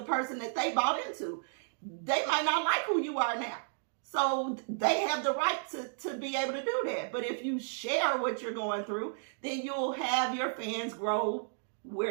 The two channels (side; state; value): left; silent; digital silence